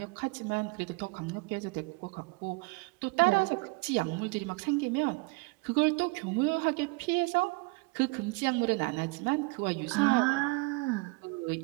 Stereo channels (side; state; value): left; quieter; 27.2 dB